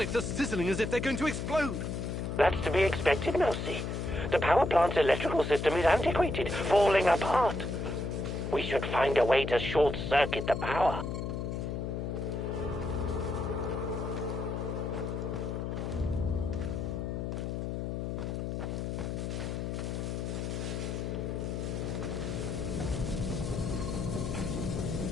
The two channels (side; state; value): left; noise; hum, 3 dB below the sound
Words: are sizzling as if they're going to explode. That's to be expected, Mousy. The power plant's electrical system is antiquated, falling apart. We should find a way to short-circuit the power.